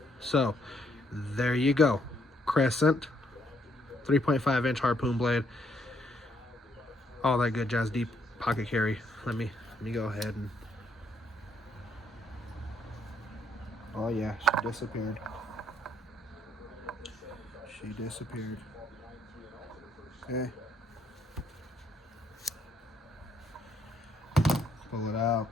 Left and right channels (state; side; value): normal; both; correlation 0.71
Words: so there you go. Crescent, 3.5-inch harpoon blade. All that good jazz, deep pocket carry. Let me go ahead and. Oh yeah, she disappeared. She disappeared. Okay. Pull it out.